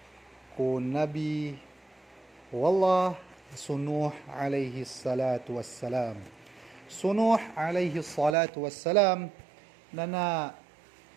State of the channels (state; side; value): drops out; left; at 8.3 s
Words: ko Nabi Wallah Sunuh alaihi salatu wassalam. Sunuh alaihi salatu wassalam na